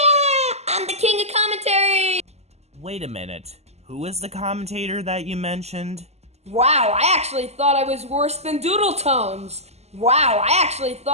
I'm the king of commentaries. Wait a minute. Who is the commentator that you mentioned? Wow, I actually thought I was worse than Doodle Tones. Wow, I actually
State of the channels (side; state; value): left; late; 0.31 ms